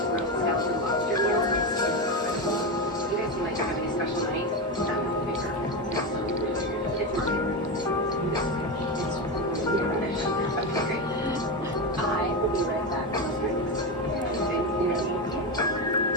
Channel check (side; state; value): both; normal; correlation 0.15